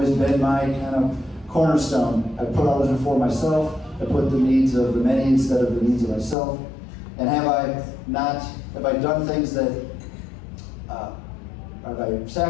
been my kind of cornerstone. I put others before myself. I put the needs of the many instead of the needs of myself. And have I done things that, have I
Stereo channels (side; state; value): right; drops out; at 6.4 s